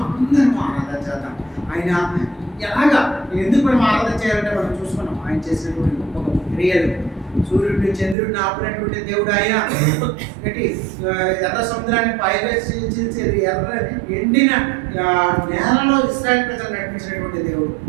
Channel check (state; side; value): drops out; left; at 8.2 s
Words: అందరం ఆరాధన చేద్దాం. ఆయన ఎలాగా ఎందుకు మనం ఆరాధన చేయాలంటే మనం చూసుకున్నాం ఆయన చేసినటువంటి గొప్ప గొప్ప క్రియలు. సూర్యుడిని చంద్రుడిని ఆపినటువంటి దేవుడు ఆయన. ఎర్ర సముద్రాన్ని పైవేసేది, ఎర్ర ఎండిన నేలలో ఇశ్రాయేలు ప్రజలు నడిపించినటువంటి దేవుడు